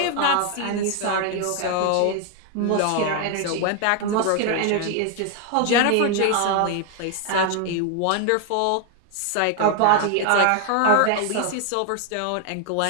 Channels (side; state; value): both; different; correlation 0.00